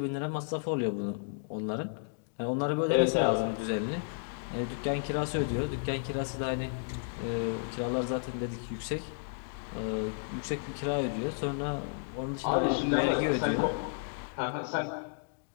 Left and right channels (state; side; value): silent; right; digital silence